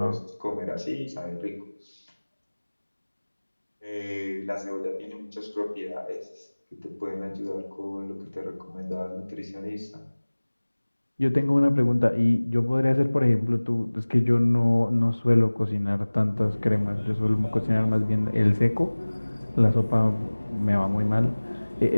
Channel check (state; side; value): inverted; both; correlation -1.00